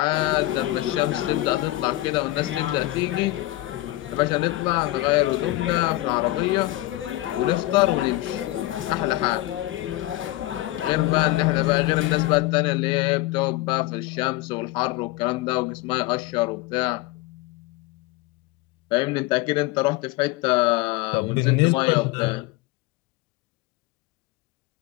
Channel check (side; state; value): right; quieter; 17.7 dB